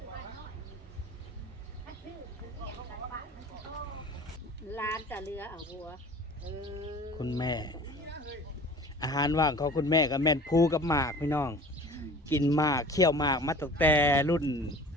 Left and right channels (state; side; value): normal; both; correlation 0.44